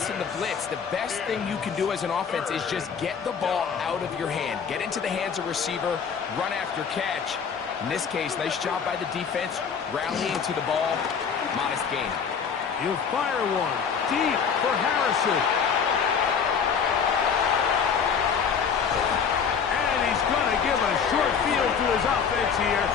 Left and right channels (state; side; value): quieter; right; 6.6 dB